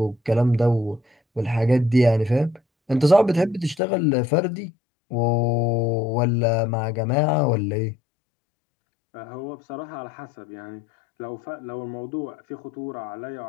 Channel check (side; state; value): right; drops out; at 3.8 s